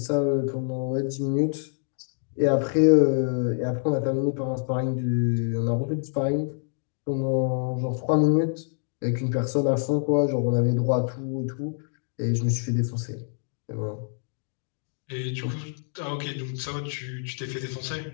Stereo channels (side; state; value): right; silent; 61 dB below the other